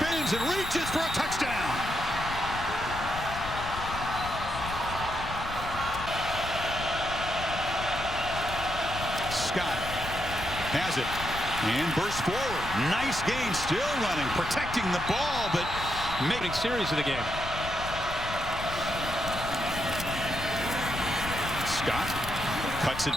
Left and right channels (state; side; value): noise; left; rumble, 9 dB below the sound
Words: and reaches for a touchdown. Scott has it. And bursts forward. Nice gain, still running, protecting the ball, but making series of the game. Scott cuts